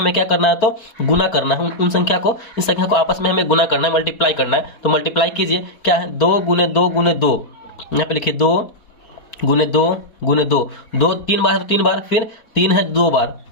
क्या करना है, तो गुना करना है। उन संख्या को, इस संख्या को आपस में हमें गुना करना है, मल्टीप्लाई करना है। तो मल्टीप्लाई कीजिए, क्या है, 2 गुने 2 गुने 2, यहाँ पे लिखिए 2 गुने 2 गुने 2, 2 3 बार है तो 3 बार, फिर 3 है 2 बार,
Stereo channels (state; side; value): late; right; 4.1 ms